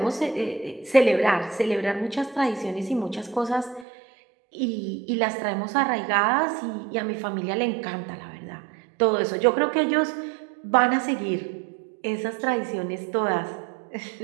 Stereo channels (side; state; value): left; drops out; at 3.9 s